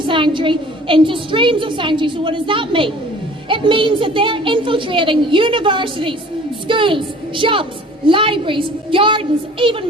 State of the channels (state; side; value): normal; both; correlation 0.48